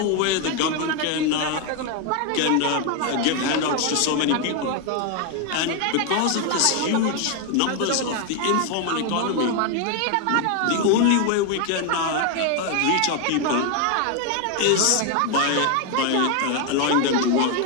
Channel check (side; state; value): both; different; correlation 0.01